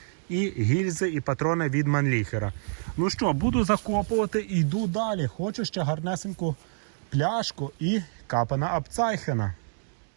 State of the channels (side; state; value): left; silent; digital silence